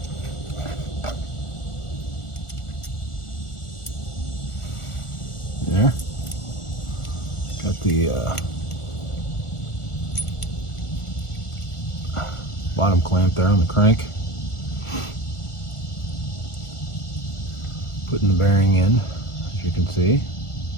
There. Got the bottom clamp there on the crank. Putting the bearing in, as you can see.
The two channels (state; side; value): late; right; 1.4 ms